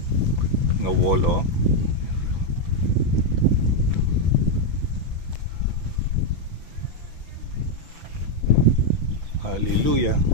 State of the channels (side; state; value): left; late; 6.1 ms